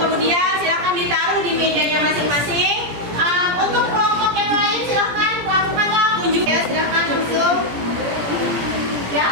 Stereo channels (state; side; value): late; left; 17 ms